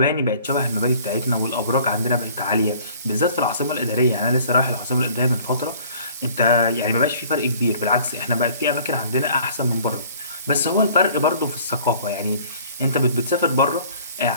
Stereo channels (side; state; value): both; inverted; correlation -0.52